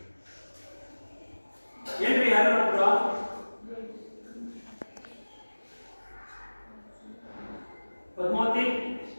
ಏನ್ರಿ ಯಾರು ಪದ್ಮಾವತಿ,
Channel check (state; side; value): inverted; both; correlation -1.00